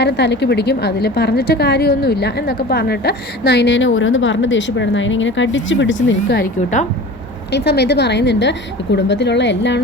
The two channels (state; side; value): normal; both; correlation 0.37